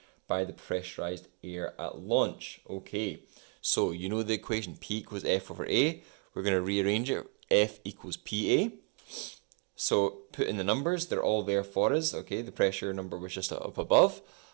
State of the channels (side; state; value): left; quieter; 39.1 dB